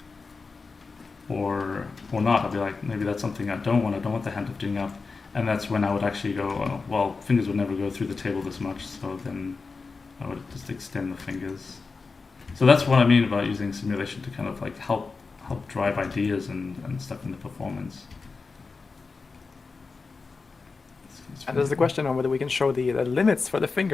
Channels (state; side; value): quieter; right; 4.4 dB